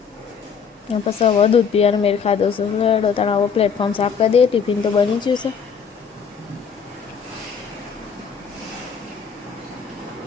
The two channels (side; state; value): right; quieter; 6.4 dB